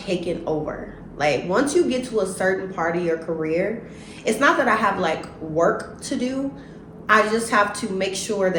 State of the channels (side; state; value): both; identical; correlation 1.00